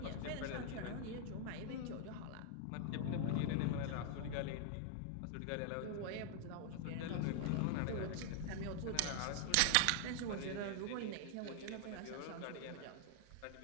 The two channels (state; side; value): different; both; correlation 0.00